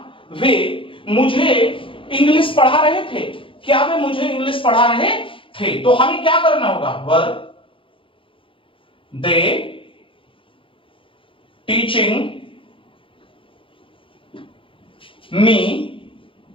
वे मुझे इंग्लिश पढ़ा रहे थे, क्या वे मुझे इंग्लिश पढ़ा रहे थे। तो हमें क्या करना होगा, were they teaching me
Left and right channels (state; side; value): late; right; 0.25 ms